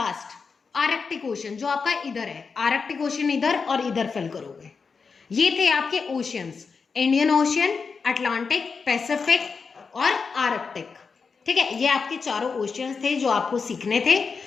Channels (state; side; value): quieter; right; 5.2 dB